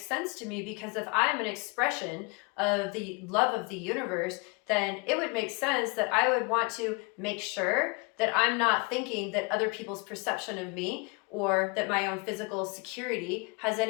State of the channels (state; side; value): quieter; right; 30.3 dB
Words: sense to me, because if I'm an expression of the love of the universe, then it would make sense that I would want to make sure that I'm not thinking that other people's perception of me, or that my own physical security has